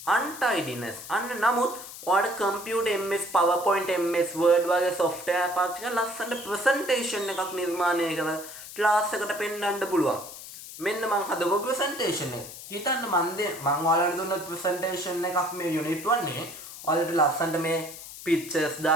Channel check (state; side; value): noise; left; hiss, 13 dB below the sound